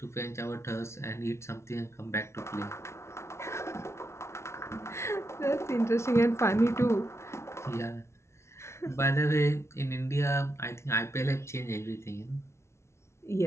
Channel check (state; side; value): late; right; 0.13 ms